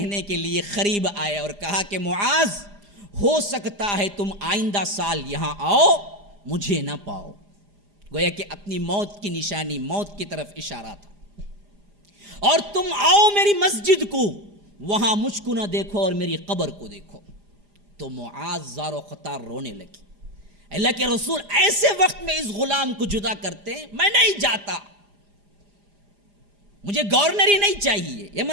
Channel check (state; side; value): late; left; 4.9 ms